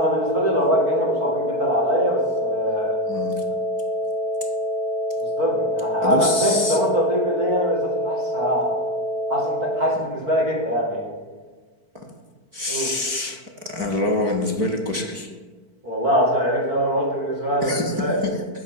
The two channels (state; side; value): late; left; 4.5 ms